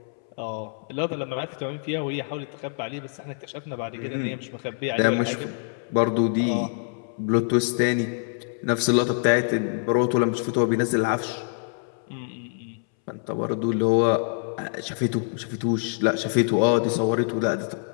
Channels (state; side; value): silent; right; 61 dB below the other